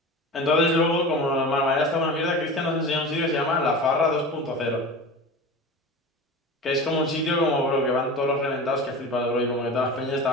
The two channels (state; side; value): normal; both; correlation 0.32